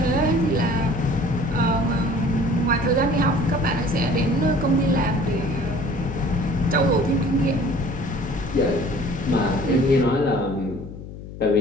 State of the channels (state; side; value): noise; left; hum, 13 dB below the sound